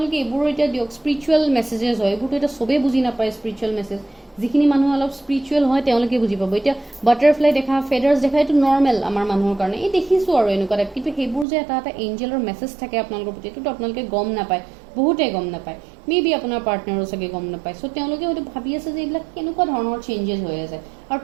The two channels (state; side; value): drops out; left; at 11.5 s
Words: এইবোৰো এতিয়া দিয়ক স্পিৰিচুৱেল মেছেজেছ হয় এইবোৰতো এতিয়া চবেই বুজি নাপায় স্পিৰিচুৱেল মেছেজ যিখিনি মানুহ অলপ স্পিৰিচুৱেল হয় তেওঁলোকে বুজি পাব এতিয়া বাটাৰফ্লাই দেখা ফেডাৰ্ছ দেখা এইটো নৰ্মেল আমাৰ মানুহৰ কাৰণে এই দেখিছোঁ আৰু এনেকুৱা টাইপ কিন্তু সেইবোৰ যে এটা এটা এঞ্জেলৰ মেছেজ থাকে আপোনালোকৰ প্ৰতি এইটোতো আপোনালোকে গম নাপায় বহুতে গম নাপায় মে বি আপোনাৰ পাৰ্টনাৰো চাগে গম নাপায় চ' তেওঁলোকে হয়তো ভাবি আছে যে এইবিলাক কেনেকুৱা ধৰণৰ চেঞ্জেছ হৈ আছে আৰু